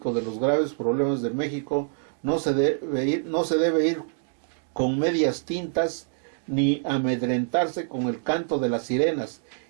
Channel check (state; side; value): silent; left; digital silence